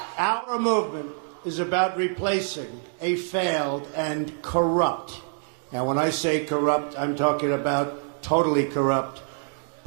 Our movement is about replacing a failed and corrupt, now when I say corrupt, I'm talking about totally corrupt,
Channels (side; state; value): left; silent; 61 dB below the other